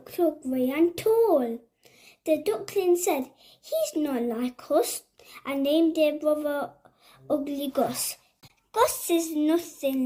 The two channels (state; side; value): identical; both; correlation 1.00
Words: so grey and tall. The duckling said, "He's not like us," and named their brother Ugly Gus. Gus is nothing